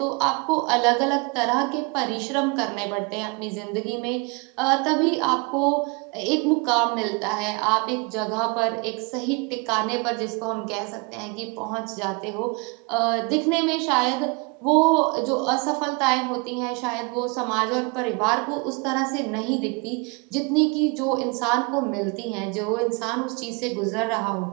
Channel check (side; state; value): left; quieter; 30.9 dB